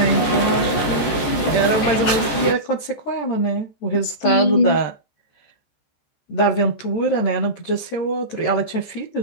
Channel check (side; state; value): right; late; 14 ms